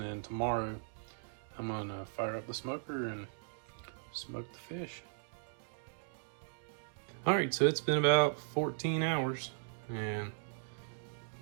then tomorrow, I'm going to fire up the smoker and smoke the fish. All right, so it's been about 14 hours, and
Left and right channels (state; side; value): silent; left; digital silence